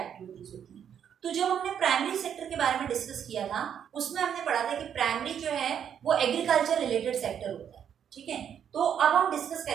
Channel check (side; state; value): left; quieter; 8.6 dB